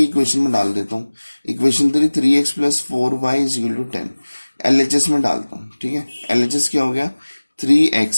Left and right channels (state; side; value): inverted; both; correlation -1.00